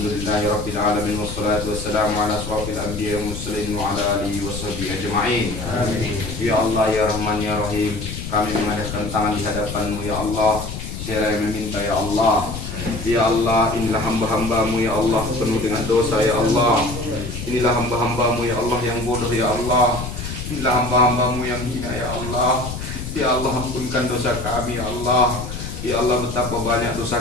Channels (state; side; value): noise; left; rumble, 7 dB below the sound